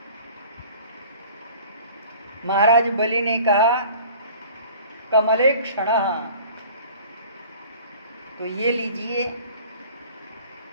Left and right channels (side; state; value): both; inverted; correlation -0.46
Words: महाराज बलि ने कहा, कमले क्षणः। तो ये लीजिए।